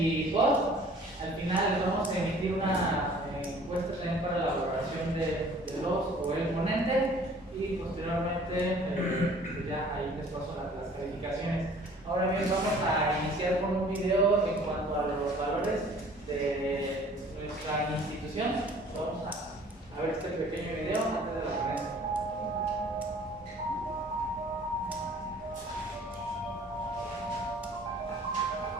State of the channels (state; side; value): normal; both; correlation 0.52